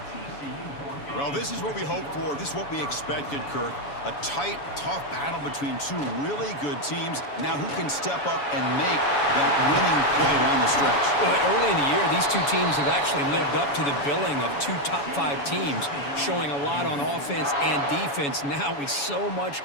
Well, this is what we hoped for. This is what we expected, Kirk. A tight, tough battle between 2 really good teams. Now who can step up and make that winning play down the stretch? Well, early in the year, these 2 teams have actually lived up to the billing of 2 top-5 teams, showing a lot on offense and defense. Now with so much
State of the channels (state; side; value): late; right; 7.0 ms